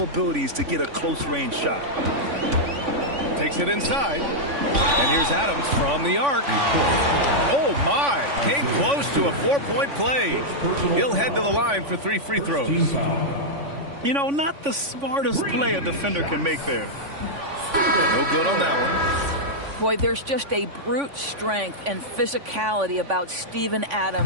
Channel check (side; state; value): left; late; 3.5 ms